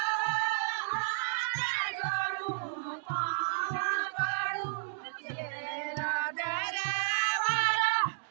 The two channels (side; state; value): left; silent; digital silence